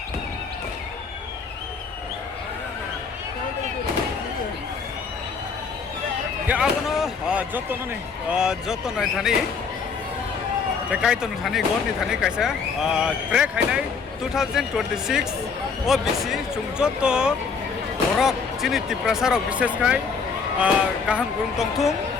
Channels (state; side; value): quieter; right; 5.4 dB